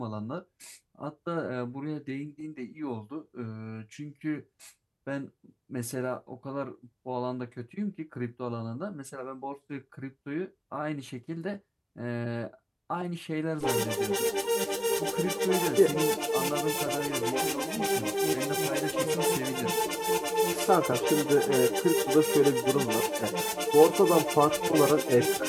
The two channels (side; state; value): both; identical; correlation 1.00